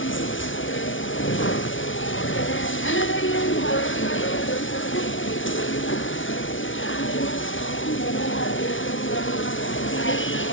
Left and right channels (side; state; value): right; late; 0.56 ms